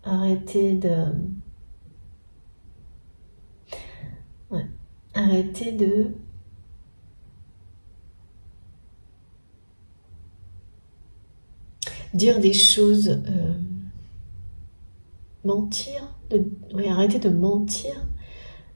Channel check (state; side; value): inverted; both; correlation -1.00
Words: arrêter de... Ouais, arrêter de... dire des choses... mentir, oui, arrêter de mentir